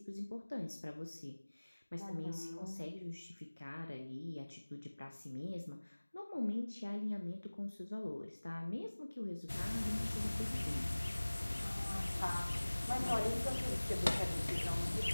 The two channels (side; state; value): both; inverted; correlation -1.00